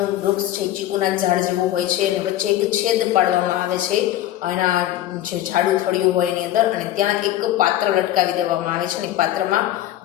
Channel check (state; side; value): quieter; right; 13.3 dB